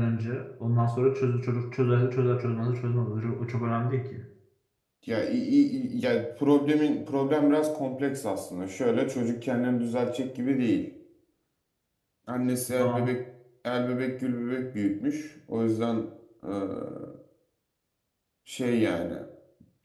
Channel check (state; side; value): identical; both; correlation 1.00